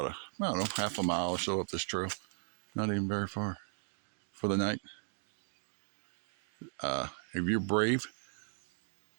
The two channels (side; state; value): left; silent; 53 dB below the other